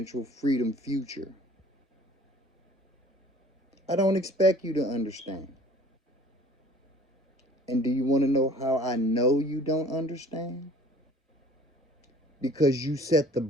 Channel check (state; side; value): normal; both; correlation 0.50